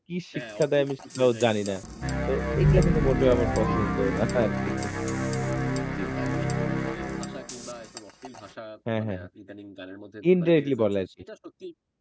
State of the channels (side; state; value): both; identical; correlation 1.00